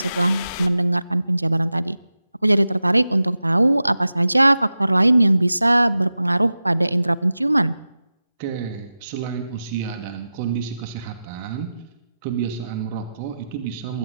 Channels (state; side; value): inverted; both; correlation -0.93